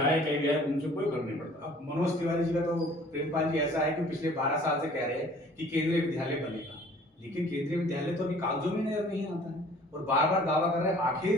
कहीं भी आए, उनसे कोई फर्क नहीं पड़ता। अब मनोज तिवारी जी का तो प्रेमपाल जी ऐसा है कि पिछले 12 साल से कह रहे हैं कि केंद्रीय विद्यालय बनेगा, लेकिन केंद्रीय विद्यालय तो अभी कागजों में नजर नहीं आता है और बार बार दावा कर रहे हैं। आखिर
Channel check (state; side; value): normal; both; correlation 0.52